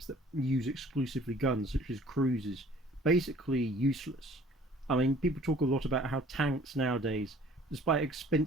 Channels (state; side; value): normal; both; correlation 0.53